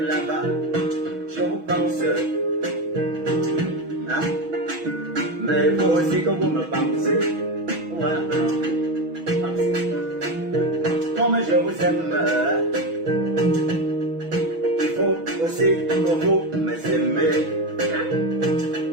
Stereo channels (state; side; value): late; left; 6.2 ms